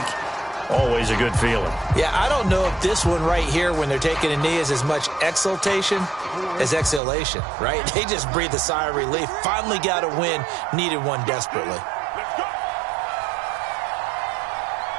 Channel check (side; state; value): left; drops out; at 7.0 s